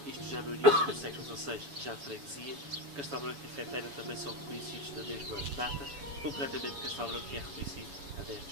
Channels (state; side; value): late; left; 7.0 ms